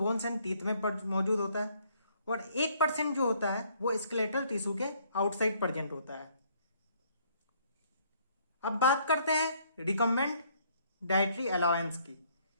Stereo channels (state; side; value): inverted; both; correlation -0.64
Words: एंड टीथ में मौजूद होता है, और 1% जो होता है वो स्केलेटल टिश्यू के आउटसाइड प्रेजेंट होता है। अब बात करते हैं रिकमेंड डाइटरी अलाउंस की,